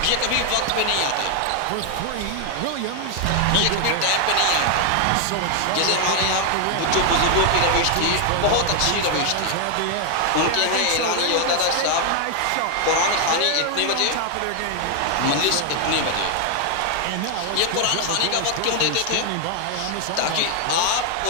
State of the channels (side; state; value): both; different; correlation 0.00